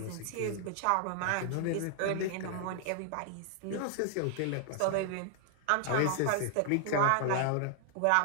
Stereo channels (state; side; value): different; both; correlation 0.00